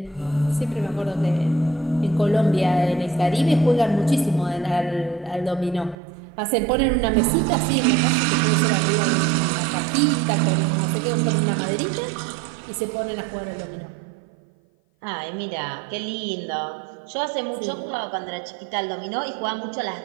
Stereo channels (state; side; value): drops out; left; at 6.0 s